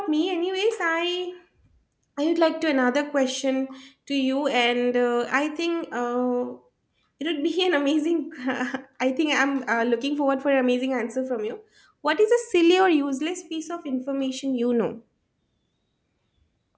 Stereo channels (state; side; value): identical; both; correlation 1.00